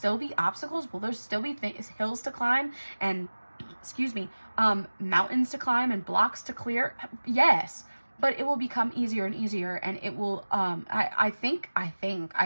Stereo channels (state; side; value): inverted; both; correlation -1.00